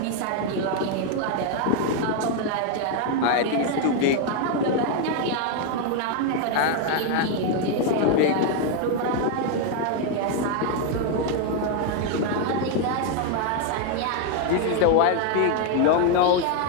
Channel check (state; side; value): different; both; correlation 0.01